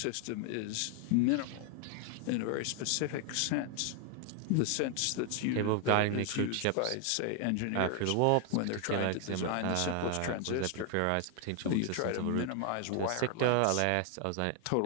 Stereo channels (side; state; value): both; different; correlation 0.00